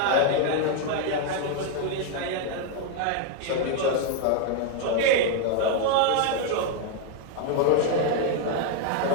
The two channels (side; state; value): both; different; correlation 0.00